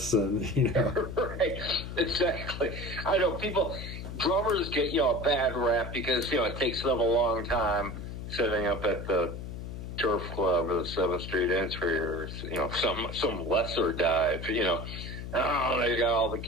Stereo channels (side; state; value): left; noise; hum, 8 dB below the sound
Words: and Right, exactly. I know drummers get a bad rap because it takes them a long time setting up at the Turf Club or the 7th Street Entry, or some lesser dive. They got all the